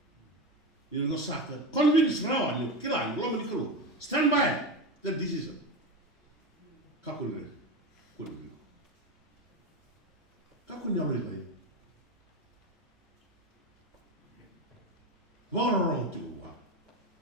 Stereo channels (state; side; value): normal; both; correlation 0.19